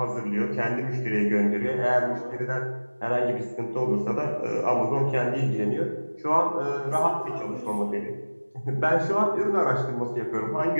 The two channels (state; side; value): inverted; both; correlation -1.00